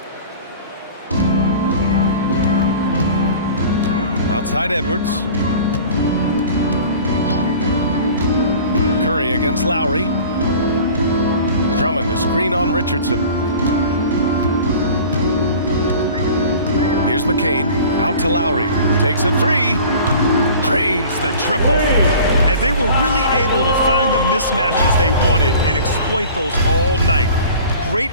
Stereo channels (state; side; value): inverted; both; correlation -0.43